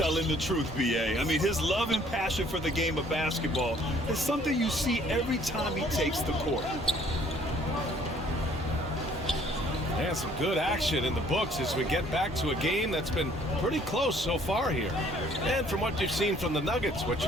the truth, B.A. I mean, his love and passion for the game of basketball is something you see every time he takes the court. And some good action in the books as we get back to a game that's been pretty close so far here. And from what you've seen from the Nuggets, what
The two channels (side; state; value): both; normal; correlation 0.59